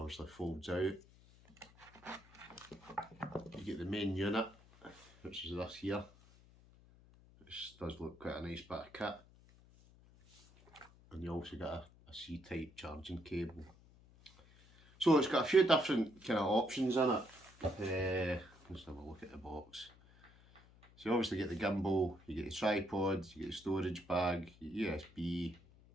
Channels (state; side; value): noise; left; hum, 25 dB below the sound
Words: folds out. You get the main unit, which is this here, which does look quite a nice bit of kit. And you also get a C-type charging cable. So it's got a few different kind of options in it. Let's have a look at the box. So you obviously get the gimbal, you get the tripod, you get the storage bag, your USB.